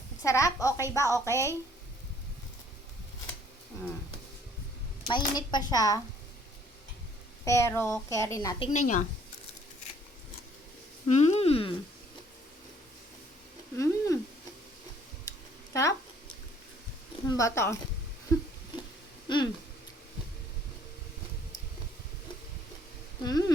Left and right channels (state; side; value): normal; both; correlation 0.60